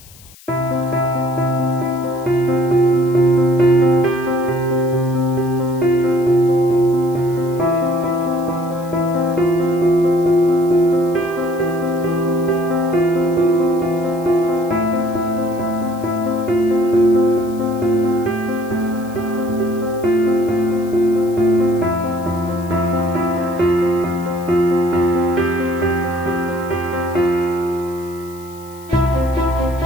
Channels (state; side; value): noise; left; hiss, 23 dB below the sound